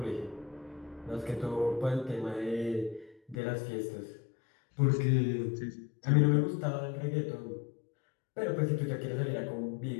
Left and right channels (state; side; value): drops out; right; at 3.4 s